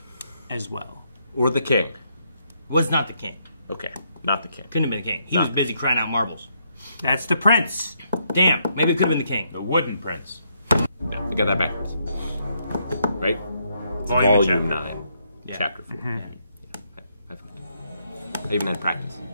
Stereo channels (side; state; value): both; inverted; correlation -0.75